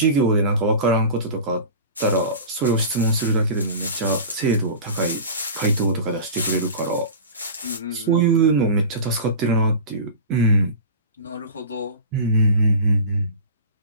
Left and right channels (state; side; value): inverted; both; correlation -0.34